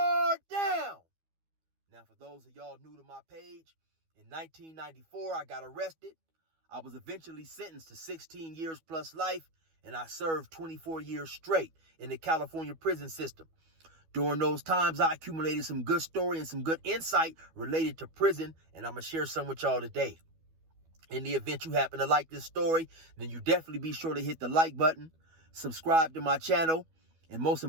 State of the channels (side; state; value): left; late; 12 ms